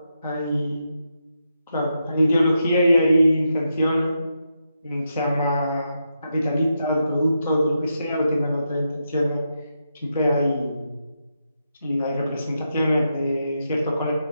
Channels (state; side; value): inverted; both; correlation -0.84